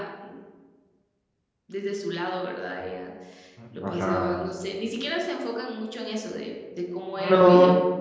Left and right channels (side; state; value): both; identical; correlation 1.00